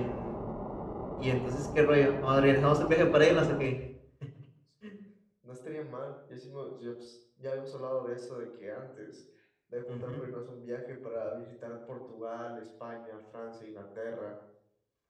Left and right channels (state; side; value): identical; both; correlation 1.00